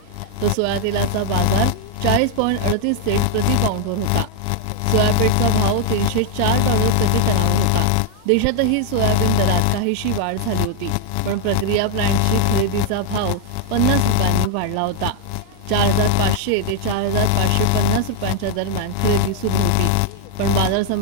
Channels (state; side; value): different; both; correlation 0.00